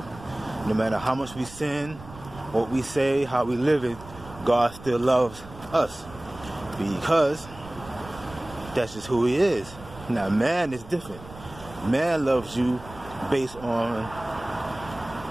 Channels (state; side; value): noise; right; rumble, 17 dB below the sound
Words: no matter how much we sin, what we say, how we live it, God still loves us, because that's just who he is. Now man is different. Man loves you based on